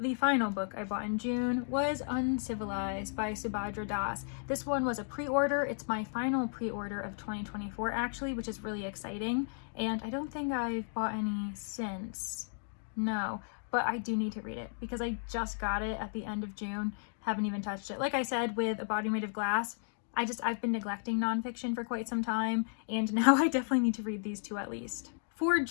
final book I bought in June, was Uncivilized by Subhadra Das. This one was a pre-order. It's my final pre-order of 2024 actually, which is really exciting. And I don't think I've bought any since. No, but I do need to read it because I just got it at the end of June. Haven't even touched it. Like I said with A Body Made of Glass, I've been neglecting nonfiction for quite some time, and now I definitely need to read these 2 at least. For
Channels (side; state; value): right; silent; digital silence